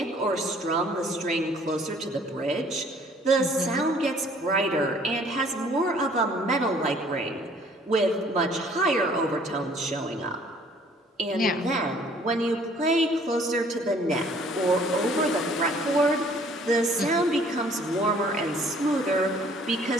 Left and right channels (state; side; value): normal; both; correlation 0.57